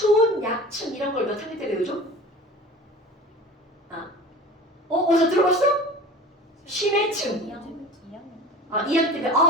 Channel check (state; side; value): normal; both; correlation 0.37